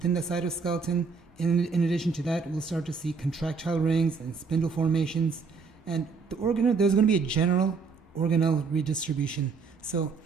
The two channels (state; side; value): quieter; left; 4.9 dB